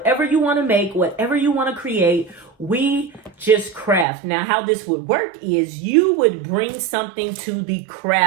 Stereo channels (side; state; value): left; drops out; at 4.0 s